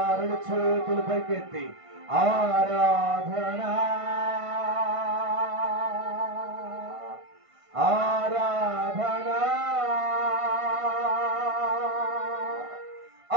రెండు చేతులు పైకెత్తి ఆరాధన ఆరాధన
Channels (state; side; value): late; left; 1.5 ms